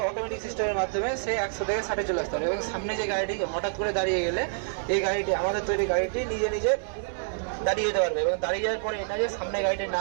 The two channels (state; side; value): silent; left; digital silence